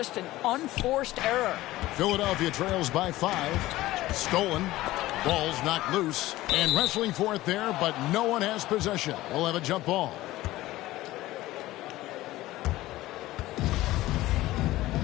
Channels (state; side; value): quieter; right; 16.9 dB